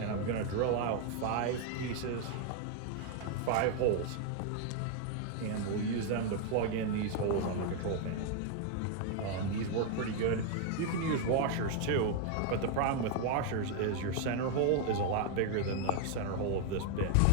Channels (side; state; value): both; different; correlation 0.01